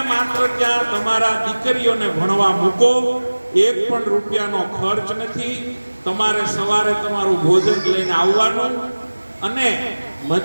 માત્ર ત્યાં તમારા દીકરીઓને ભણવા મૂકો, એક પણ રૂપિયાનો ખર્ચ નથી. તમારે સવારે તમારું ભોજન લઈને આવવાનું અને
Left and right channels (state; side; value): inverted; both; correlation -1.00